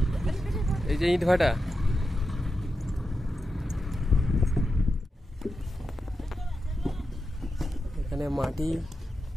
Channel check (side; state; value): both; normal; correlation 0.89